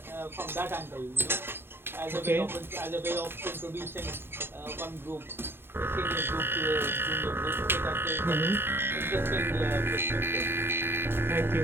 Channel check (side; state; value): left; late; 0.11 ms